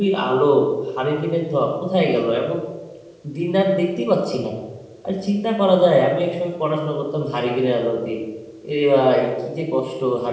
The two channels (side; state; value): both; identical; correlation 1.00